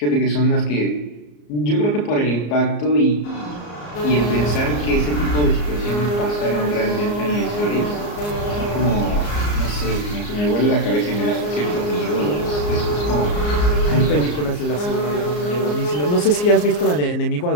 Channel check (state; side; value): late; right; 34 ms